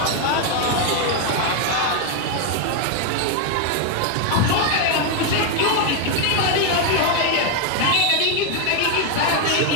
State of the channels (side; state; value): both; different; correlation 0.01